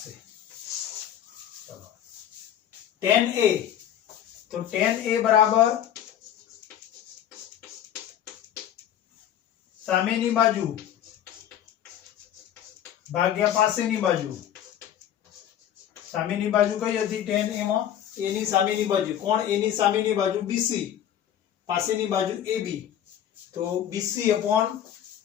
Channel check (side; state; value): right; quieter; 10.5 dB